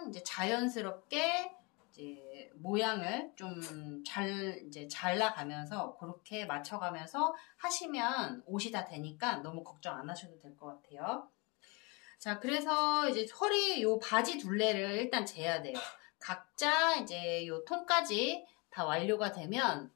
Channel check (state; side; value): quieter; right; 28.5 dB